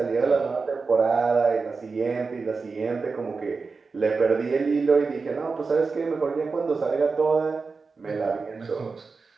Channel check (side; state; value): left; quieter; 4.5 dB